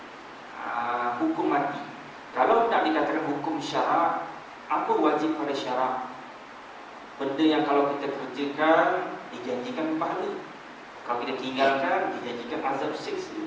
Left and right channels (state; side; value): identical; both; correlation 1.00